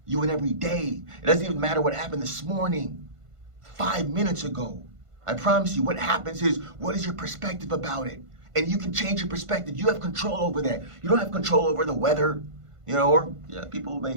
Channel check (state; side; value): late; left; 1.5 ms